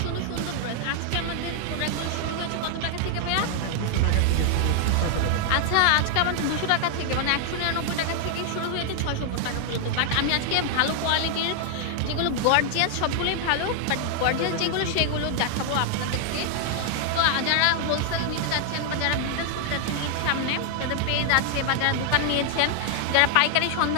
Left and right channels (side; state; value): both; different; correlation 0.00